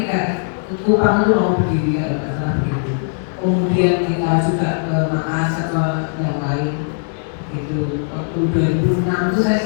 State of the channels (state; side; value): silent; right; digital silence